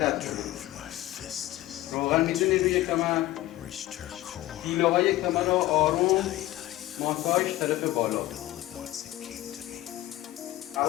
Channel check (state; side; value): quieter; right; 15.9 dB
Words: کنه. روغن می‌زنید روی کمر، پیله های کمر رو آروم ماساژ طرف بالا.